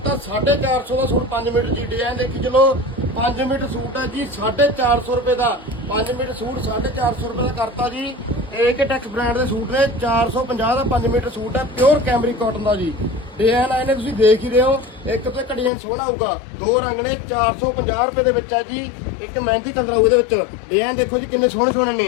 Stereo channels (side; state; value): right; drops out; at 15.7 s